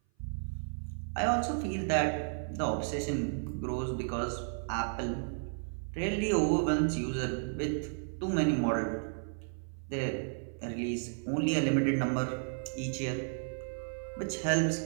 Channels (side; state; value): left; silent; 56 dB below the other